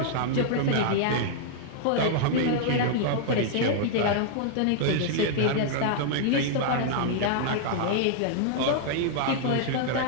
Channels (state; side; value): different; both; correlation -0.01